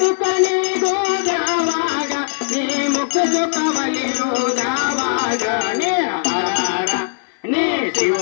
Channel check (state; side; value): silent; right; 58 dB below the other